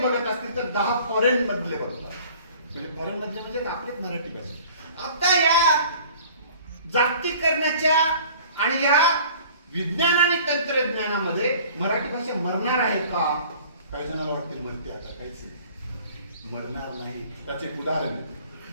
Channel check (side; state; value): both; inverted; correlation -0.49